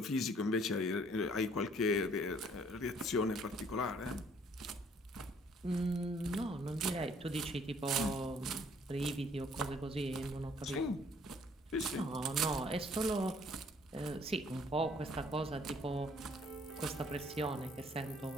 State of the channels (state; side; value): normal; both; correlation 0.61